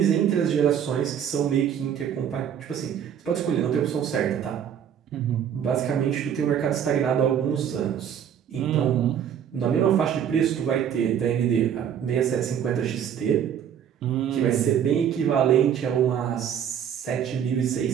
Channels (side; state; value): left; quieter; 8.9 dB